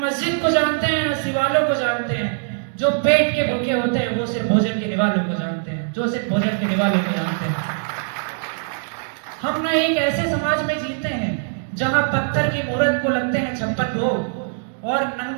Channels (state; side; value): silent; left; digital silence